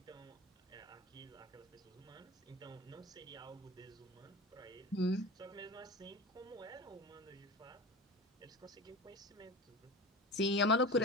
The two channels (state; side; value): normal; both; correlation 0.31